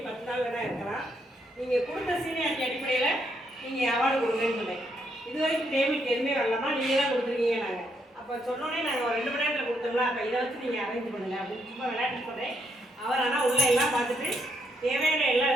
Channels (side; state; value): both; normal; correlation 0.75